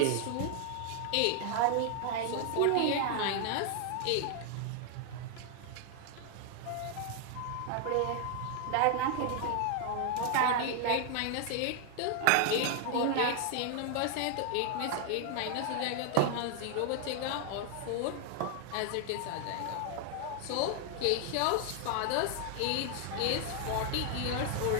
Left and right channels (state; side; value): different; both; correlation 0.00